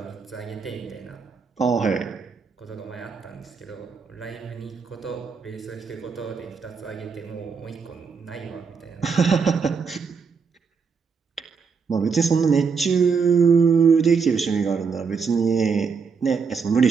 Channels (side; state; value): left; quieter; 5.6 dB